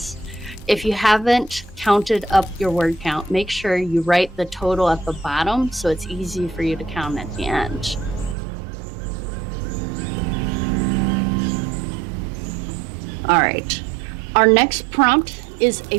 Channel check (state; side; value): drops out; left; at 8.3 s